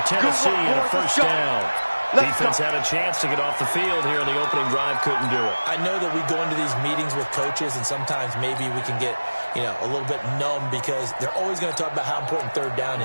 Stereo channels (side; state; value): both; inverted; correlation -1.00